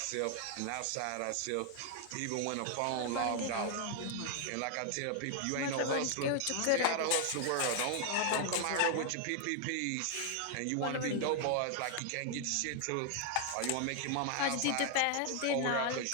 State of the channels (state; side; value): different; both; correlation 0.00